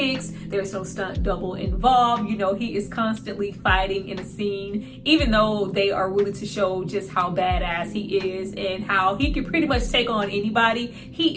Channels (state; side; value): identical; both; correlation 1.00